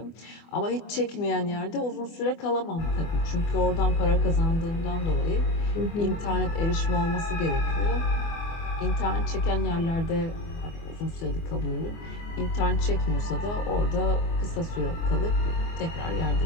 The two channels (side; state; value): right; late; 24 ms